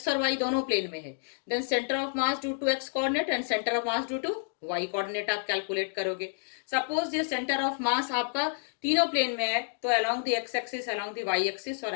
और y दोनों प्लेन में है then centre of mass due to x coordinate and centre of mass due to y coordinate आप कैलकुलेट करोगे। सपोज ये सेंटर ऑफ मास आपका तीनों प्लेन में है तो along the x axis, along the y axis और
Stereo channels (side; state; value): right; silent; 58 dB below the other